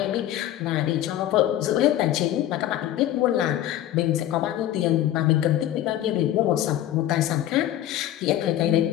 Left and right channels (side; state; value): right; quieter; 12.7 dB